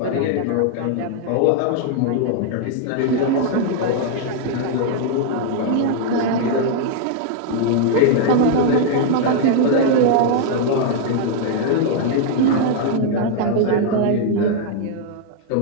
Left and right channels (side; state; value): both; different; correlation 0.00